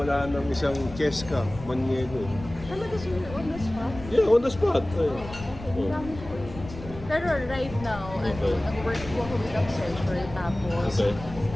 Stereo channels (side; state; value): left; noise; rumble, 13 dB below the sound